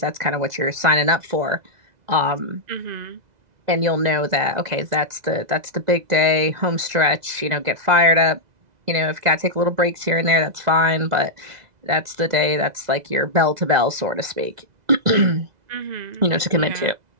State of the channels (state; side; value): late; left; 2.0 ms